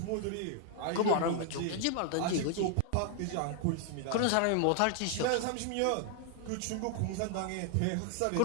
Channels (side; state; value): both; different; correlation 0.00